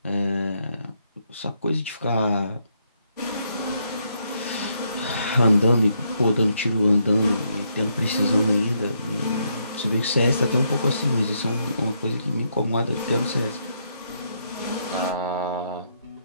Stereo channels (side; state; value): both; inverted; correlation -0.76